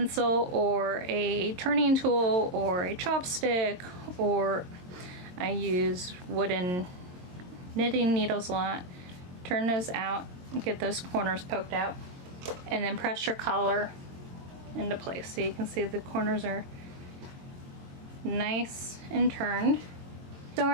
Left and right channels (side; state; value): left; late; 22 ms